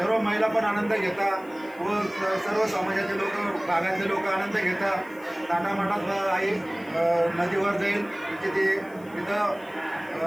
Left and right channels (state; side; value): noise; left; hiss, 26 dB below the sound